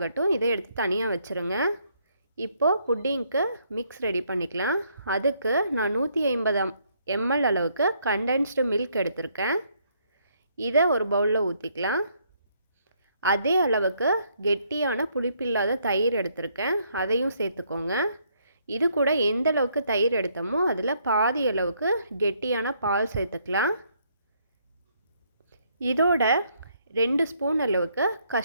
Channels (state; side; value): inverted; both; correlation -0.70